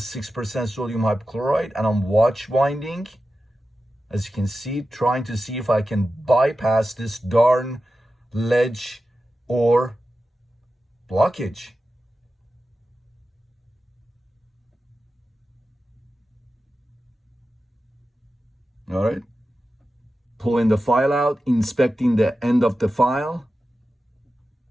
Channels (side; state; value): both; normal; correlation 0.93